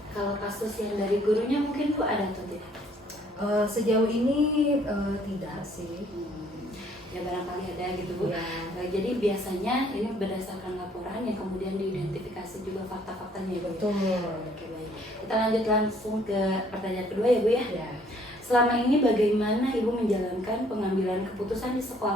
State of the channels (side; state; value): both; normal; correlation 0.62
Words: Kalau kasus yang dari gurunya mungkin Bu ada atau tidak? Sejauh ini tidak sih. ya barangkali ada gitu Bu. Ya. Jadi biasanya ini berdasarkan laporan yang kemudian diidentifikasi juga fakta-faktanya ya Bu. Betul. Oke baik. Kita lanjut langsung ke pertanyaan kedua ya Bu ya. Ya. Selama ini bagaimana Ibu menjalankan pengambilan keputusan di